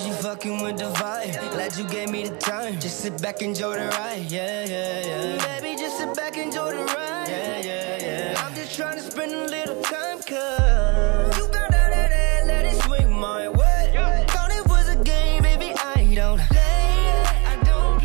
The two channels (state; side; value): quieter; left; 29.9 dB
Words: you fucking with the vibe? Glad you gave me the time. Just sit back, enjoy the ride. Yeah, yeah, yeah. Baby, just sit back, enjoy the ride. Yeah, yeah, yeah. I'm just trying to spend a little time, cause you got that, let it swing my way. Thought it was a game, baby, I don't play. I don't